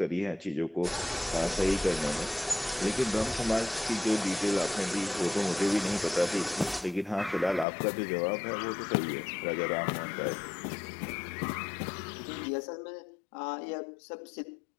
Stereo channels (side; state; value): right; drops out; at 7.7 s